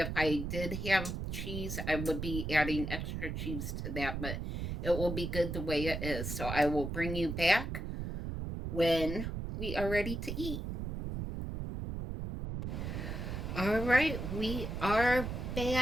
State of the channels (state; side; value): noise; right; rumble, 4 dB below the sound